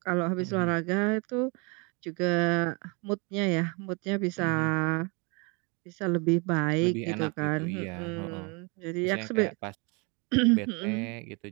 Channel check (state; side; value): quieter; left; 31.3 dB